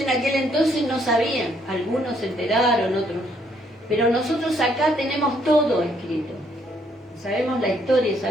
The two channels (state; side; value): normal; both; correlation 0.69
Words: aquel entonces no sabían, algunos se enteraron, otros, pero nosotros acá tenemos todo escrito. Sabemos la historia,